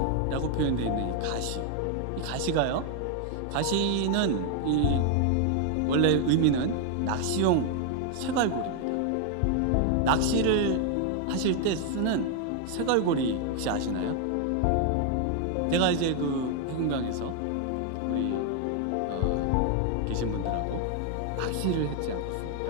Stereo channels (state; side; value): different; both; correlation 0.00